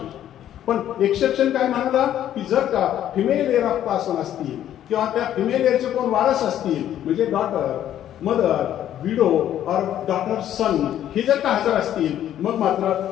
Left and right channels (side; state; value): right; quieter; 11.3 dB